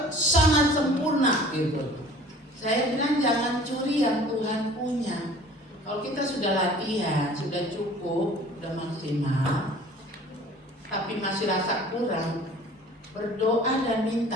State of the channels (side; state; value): both; normal; correlation 0.47